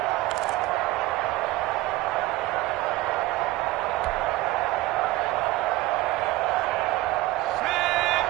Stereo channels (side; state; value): left; quieter; 18.1 dB